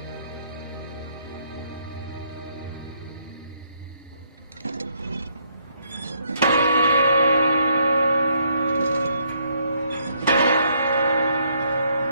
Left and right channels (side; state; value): both; inverted; correlation -0.71